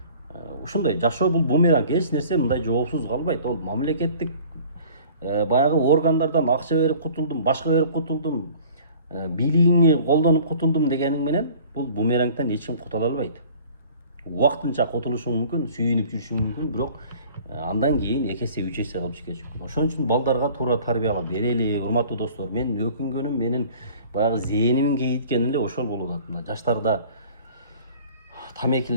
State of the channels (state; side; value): inverted; both; correlation -0.48